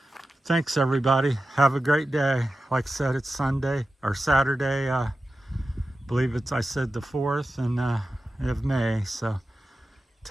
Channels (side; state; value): both; normal; correlation 0.93